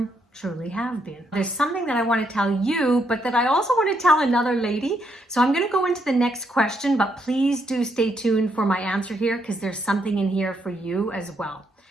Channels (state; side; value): normal; both; correlation 0.76